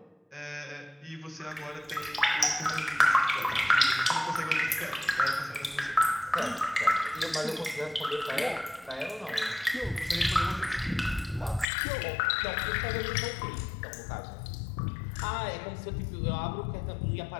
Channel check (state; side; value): drops out; right; at 11.7 s